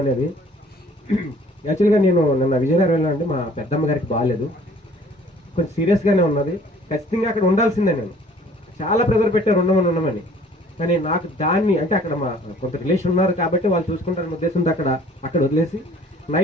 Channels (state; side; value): normal; both; correlation 0.55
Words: అనేది. యాక్చువల్గా నేను నిన్న విజయనగరంలో అండి, మా పెద్దమ్మ గారికి బాగాలేదు, కొంచెం సీరియస్గానే ఉన్నది. ఖచ్చితంగా అక్కడ ఉండాల్సిందే. నేను చాలా ప్రెజర్ పెట్టారు ఉండమని. కానీ నాకు దాన్ని, అంటే అక్కడ మా కొంత రిలేషన్ ఉన్నారు కాబట్టి వాళ్ళు చూసుకుంటారని ఉద్దేశంతో అక్కడ వదిలేసి